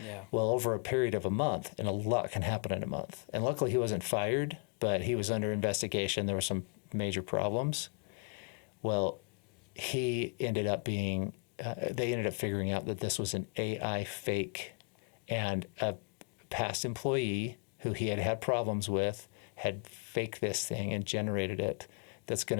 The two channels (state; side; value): quieter; right; 39.4 dB